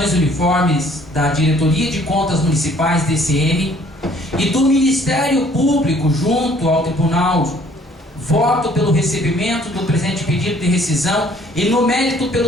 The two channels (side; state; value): both; normal; correlation 0.59